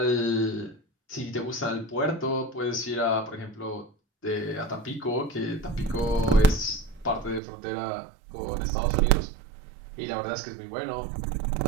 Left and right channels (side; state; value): left; drops out; at 7.4 s